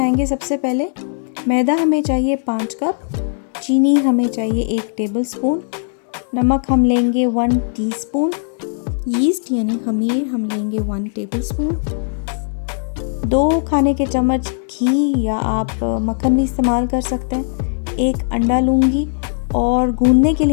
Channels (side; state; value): right; silent; digital silence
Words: सबसे पहले मैदा हमें चाहिए 5 कप, चीनी हमें चाहिए 1 टेबल स्पून, नमक हम लेंगे 1 टीस्पून, यीस्ट यानी खमीर हम लेंगे 1 टेबल स्पून, 2 खाने के चम्मच घी या आप मक्खन भी इस्तेमाल कर सकते हैं, 1 अंडा लूँगी और गूंदने के